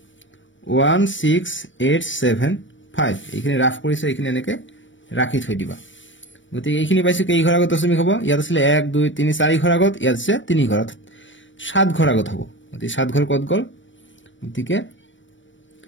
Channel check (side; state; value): right; late; 0.55 ms